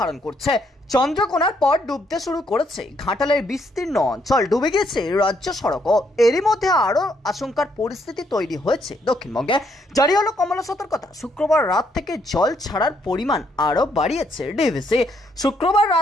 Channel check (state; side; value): normal; both; correlation 0.72